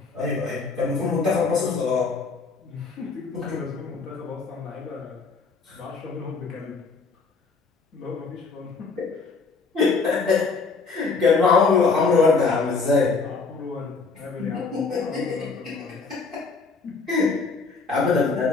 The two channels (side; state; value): right; quieter; 4.5 dB